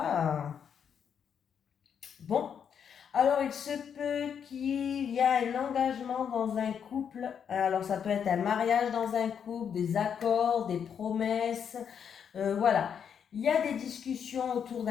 bon. Alors, il se peut qu'il y ait un engagement dans un couple. Alors, ça peut être un mariage dans un couple, des accords, des promesses. Voilà. Il y a des discussions autour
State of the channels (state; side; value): quieter; right; 7.7 dB